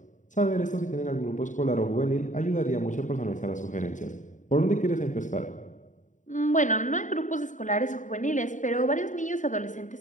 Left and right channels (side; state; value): right; late; 0.36 ms